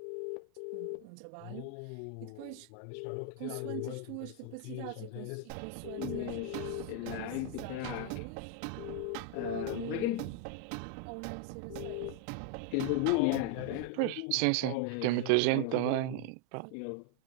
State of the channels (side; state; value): both; different; correlation 0.00